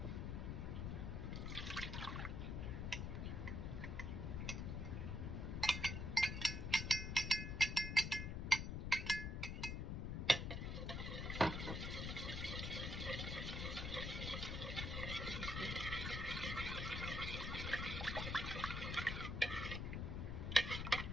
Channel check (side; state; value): left; noise; rumble, 2 dB below the sound